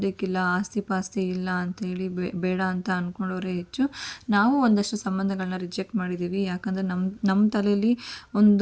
ಆಸ್ತಿ ಪಾಸ್ತಿ ಇಲ್ಲ ಅಂತೇಳಿ ಬೇಡ ಅಂತ ಅಂದ್ಕೊಂಡವ್ರೆ ಹೆಚ್ಚು. ಹೆಚ್ಚು ನಾವು ಒಂದಷ್ಟು ಸಂಬಂಧಗಳನ್ನ ರಿಜೆಕ್ಟ್ ಮಾಡಿದ್ದೀವಿ. ಯಾಕಂದರೆ ನಮ್ಮ ತಲೆಯಲ್ಲಿ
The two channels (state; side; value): identical; both; correlation 1.00